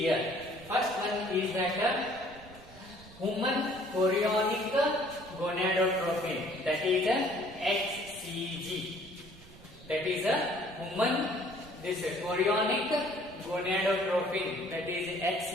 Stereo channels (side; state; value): right; noise; rumble, 20 dB below the sound